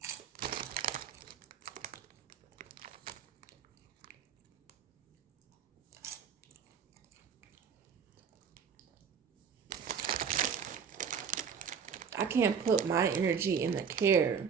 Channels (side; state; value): left; quieter; 6.8 dB